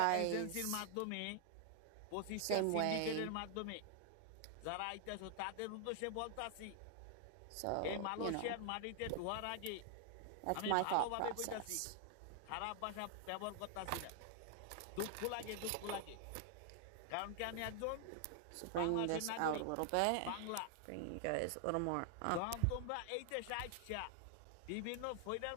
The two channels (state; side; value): different; both; correlation 0.00